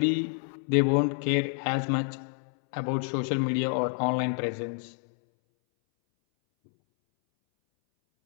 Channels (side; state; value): right; silent; 59 dB below the other